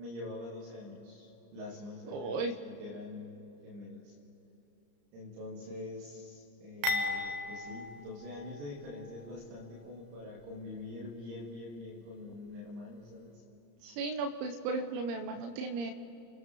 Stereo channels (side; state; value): left; late; 34 ms